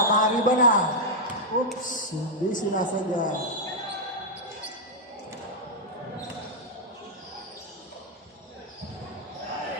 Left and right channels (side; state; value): both; normal; correlation -0.04